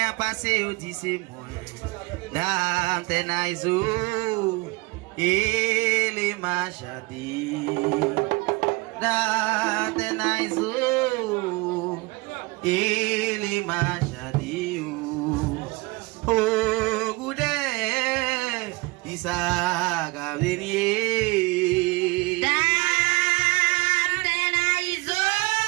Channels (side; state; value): left; quieter; 24.4 dB